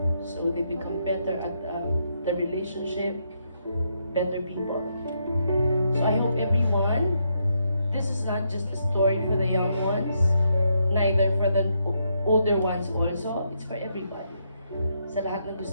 So they become better at the relationship, better people. So I hope everyone, this is not just a story for the young ones, neither for the older ones also, it's for everybody. Sa lahat na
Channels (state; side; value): inverted; both; correlation -0.77